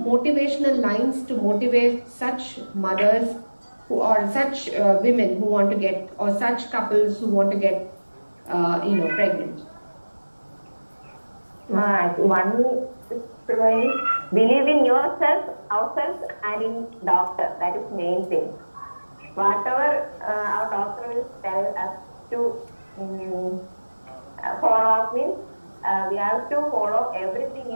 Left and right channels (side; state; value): both; inverted; correlation -1.00